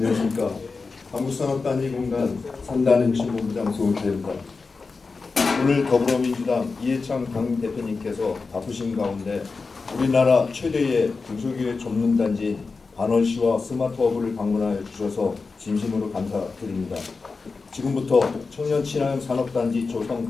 한국산업단지공단 첨단혁신본부장 조성태입니다. 오늘 더불어민주당 이해찬 당 대표님께서 바쁘신 가운데 우리나라 최대의 중소기업 전문단지인 반월시와 스마트허브를 방문하여 주셔서 진심으로 감사드립니다. 지금부터 청년 친화형 산업단지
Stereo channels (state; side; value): quieter; right; 4.3 dB